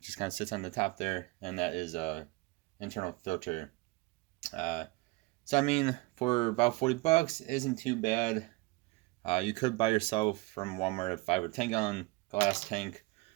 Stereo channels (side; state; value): left; quieter; 23.0 dB